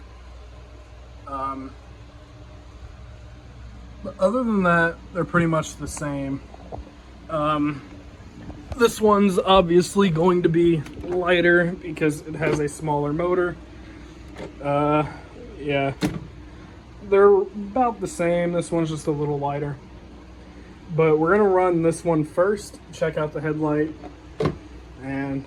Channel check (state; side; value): identical; both; correlation 1.00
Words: But other than that, they're pretty much the same. This one's obviously going to be lighter because it has a smaller motor. Yeah, they're about the same. This one's just a little lighter. But we're gonna run this one first, check out the headlight. And